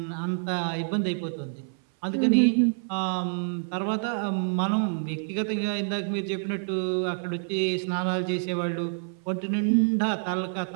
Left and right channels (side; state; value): left; silent; 60 dB below the other